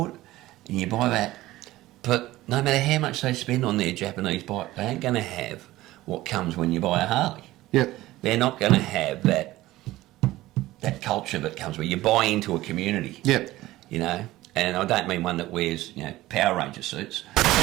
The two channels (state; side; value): quieter; left; 16.8 dB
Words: it, and you buy that, But no matter how much they spend on their Japanese bike, they ain't going to have what comes when you buy a Harley. Yep. They're not going to have that culture that comes where you buy into a community. Yep. You know, and I don't mean one that wears, you know, Power Ranger suits.